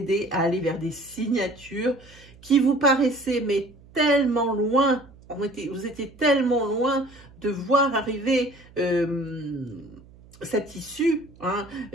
à aller vers des signatures qui vous paraissaient mais tellement loin. Vous étiez tellement loin de voir arriver cette issue, hein,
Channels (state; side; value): noise; right; hum, 24 dB below the sound